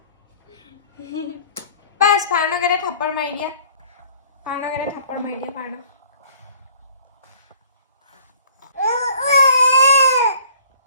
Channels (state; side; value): inverted; both; correlation -0.53